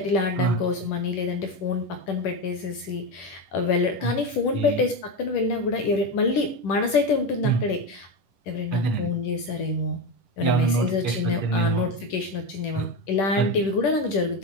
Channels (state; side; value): late; right; 10 ms